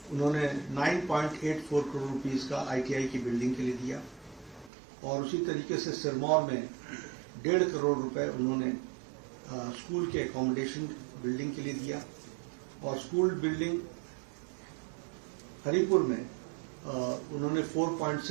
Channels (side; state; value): left; drops out; at 4.7 s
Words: उन्होंने 9.84 करोड़ रुपीस का ITI की बिल्डिंग के लिए दिया, और उसी तरीके से सिरमौर में 1.5 करोड़ रुपए उन्होंने स्कूल के एकोमोडेशन बिल्डिंग के लिए दिया, और स्कूल बिल्डिंग हरिपुर में उन्होंने